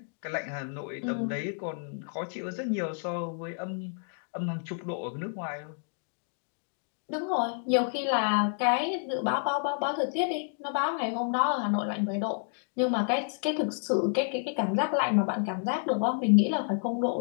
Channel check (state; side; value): silent; right; 58 dB below the other